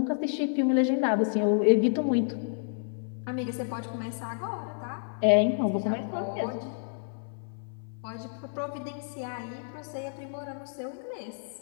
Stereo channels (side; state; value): right; silent; 58 dB below the other